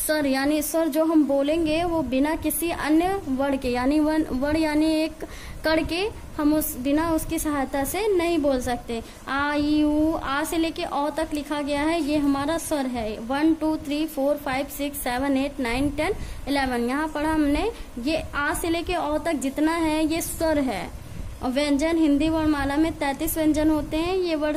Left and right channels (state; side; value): identical; both; correlation 1.00